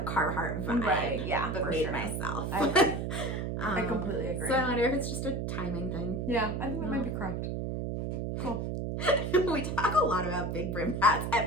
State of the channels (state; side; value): noise; right; hum, 2 dB below the sound